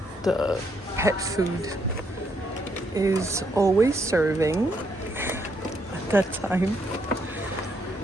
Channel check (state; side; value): normal; both; correlation 0.74